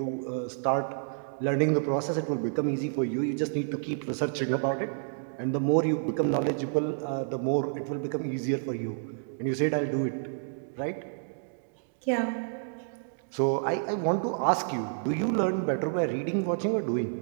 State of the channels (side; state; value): left; silent; digital silence